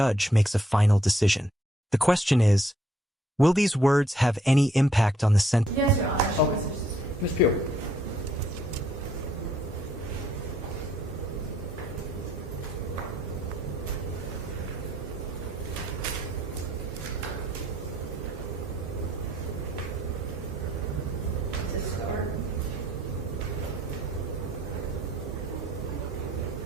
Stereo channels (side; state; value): both; normal; correlation 0.68